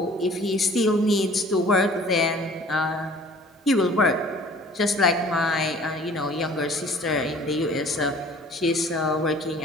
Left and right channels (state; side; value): normal; both; correlation 0.50